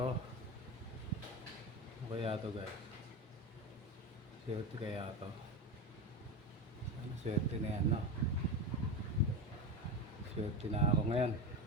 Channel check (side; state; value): both; normal; correlation 0.21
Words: Ano kaya to guys? Swerte kaya to. Ano swerte na yan, no? Swerte na ako ngayon.